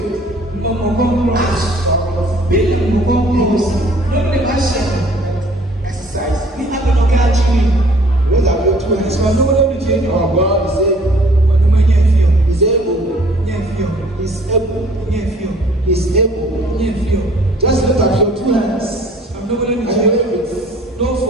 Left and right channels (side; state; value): both; normal; correlation 0.55